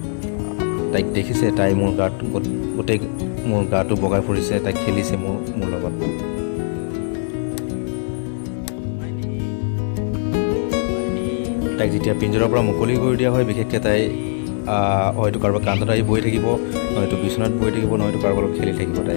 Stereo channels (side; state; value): right; silent; 65 dB below the other